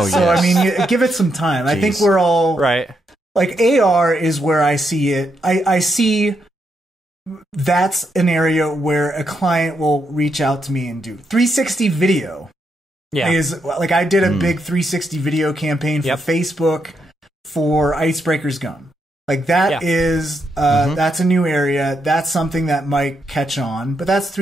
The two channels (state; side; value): normal; both; correlation 0.80